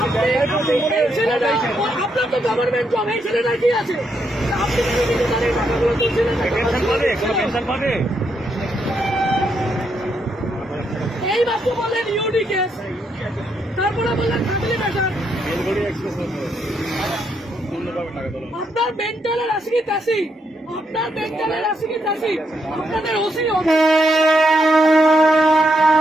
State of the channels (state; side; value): normal; both; correlation 0.78